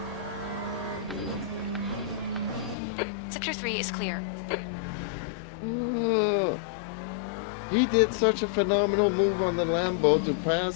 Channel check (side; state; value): right; drops out; at 2.8 s